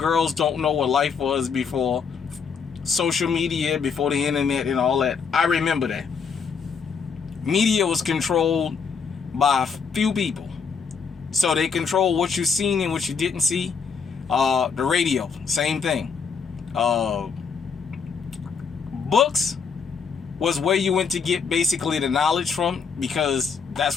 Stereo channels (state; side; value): quieter; right; 5.9 dB